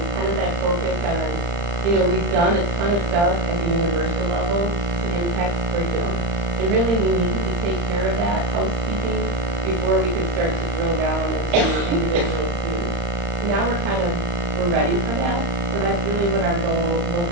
kind of that focus on, we've done a ton of stuff at the universal level to impact curriculum. And really we needed to take care of that housekeeping before we could start to drill down into individual students. Now we're ready for that. So that's really what our goal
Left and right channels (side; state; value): left; late; 35 ms